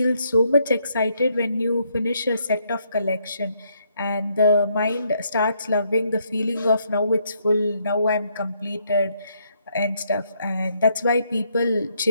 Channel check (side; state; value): both; inverted; correlation -0.73